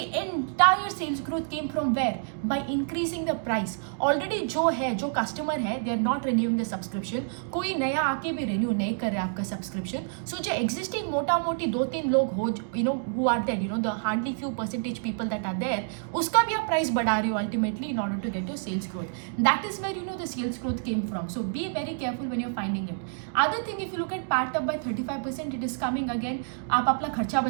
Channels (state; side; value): silent; left; digital silence